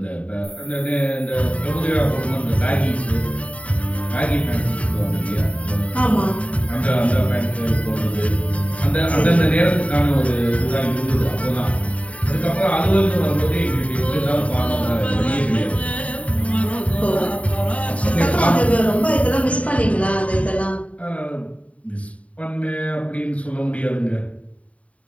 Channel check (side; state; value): right; late; 0.066 ms